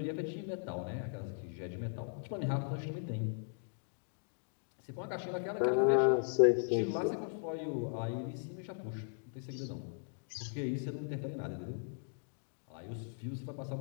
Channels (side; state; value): right; silent; digital silence